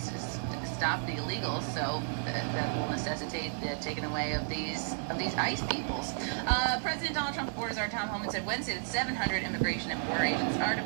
the illegals, so that will necessitate the taking away of these ICE peoples. President Donald Trump orders our Tom Homan said Wednesday that 700 immigration and border agents are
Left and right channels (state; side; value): silent; left; digital silence